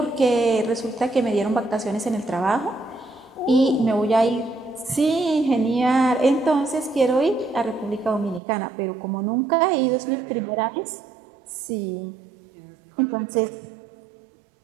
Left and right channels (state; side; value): drops out; left; at 8.4 s